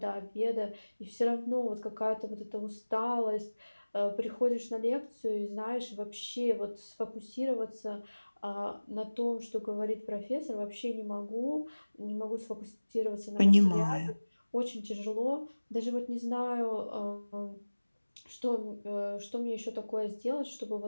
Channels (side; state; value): both; inverted; correlation -1.00